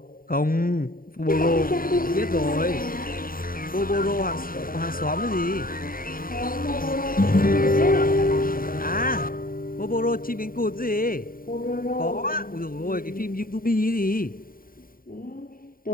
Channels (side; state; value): right; late; 0.41 ms